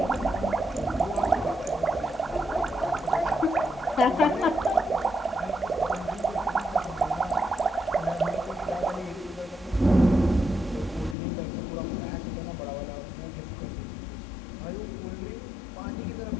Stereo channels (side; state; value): right; drops out; at 11.2 s